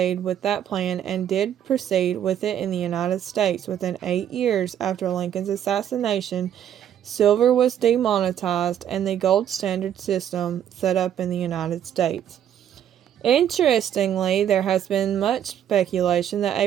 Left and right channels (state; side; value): quieter; left; 10.0 dB